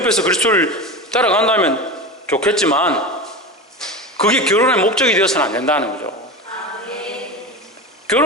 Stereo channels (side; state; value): both; normal; correlation 0.26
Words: 그리스도를 따라간다면 좋겠지만 그게 결혼의 목적이 되어서는 안 된다는 거죠.